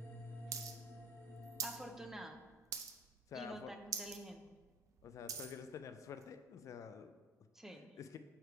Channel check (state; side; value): normal; both; correlation 0.40